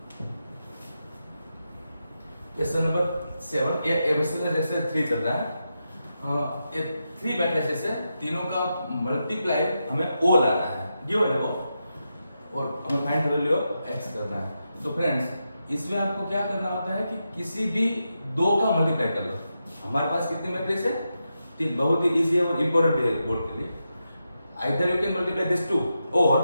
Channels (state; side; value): inverted; both; correlation -0.87